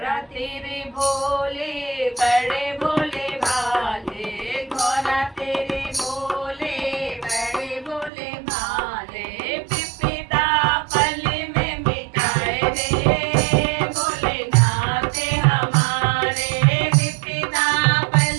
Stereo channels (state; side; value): drops out; left; at 8.1 s